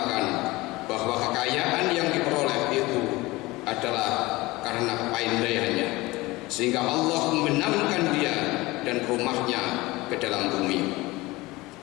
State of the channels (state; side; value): quieter; right; 20.9 dB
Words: bahwa kekayaan yang diperoleh itu adalah karena kepandaiannya, sehingga Allah membenamkan dia dan rumahnya ke dalam bumi.